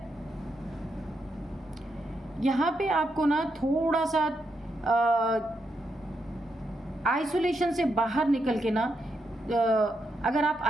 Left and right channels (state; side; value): normal; both; correlation 0.82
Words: यहाँ पे आपको ना थोड़ा सा आइसोलेशन से बाहर निकल के ना, अगर आप